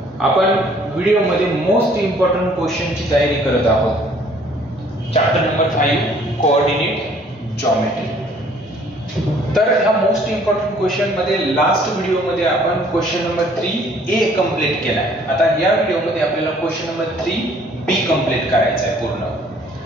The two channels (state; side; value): normal; both; correlation 0.58